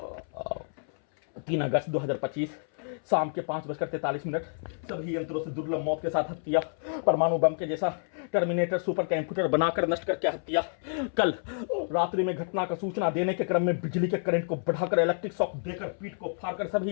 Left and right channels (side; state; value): right; silent; 59 dB below the other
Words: 3 अगस्त 2025 शाम के 5:43 सभी यंत्रों से दुर्लभ मौत के साथ हत्या। परमाणु बम के जैसा टर्मिनेटर सुपर कंप्यूटर बनाकर नष्ट करके हत्या। कल रात्रि में घटना का सूचना देने के क्रम में बिजली के करंट को बढ़ाकर इलेक्ट्रिक शॉक देकर पीठ को फाड़कर